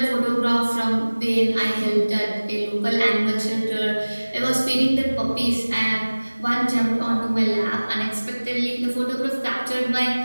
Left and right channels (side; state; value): both; inverted; correlation -1.00